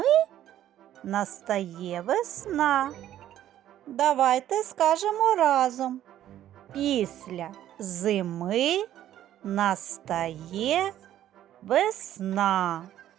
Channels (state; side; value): quieter; left; 12.0 dB